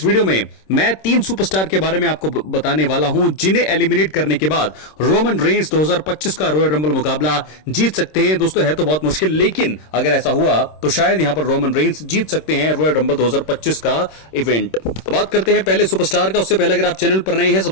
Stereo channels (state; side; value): late; right; 26 ms